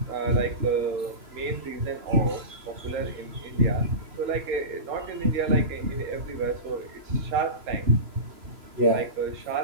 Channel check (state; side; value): late; left; 3.0 ms